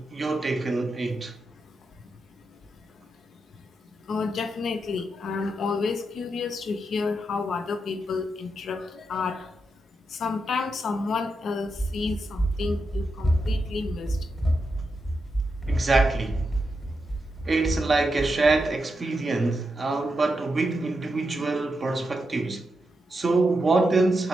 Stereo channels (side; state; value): both; normal; correlation 0.85